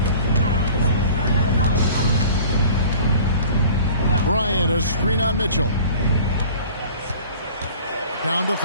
Bryant, a screen on Mitchell. Down to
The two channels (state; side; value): inverted; both; correlation -0.46